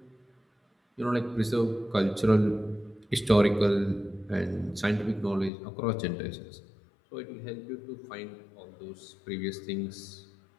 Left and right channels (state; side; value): drops out; right; at 5.5 s